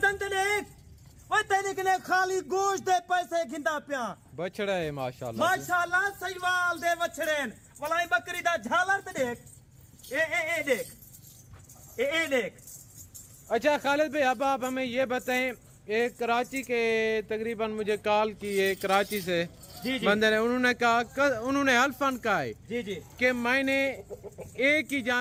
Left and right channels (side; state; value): both; identical; correlation 1.00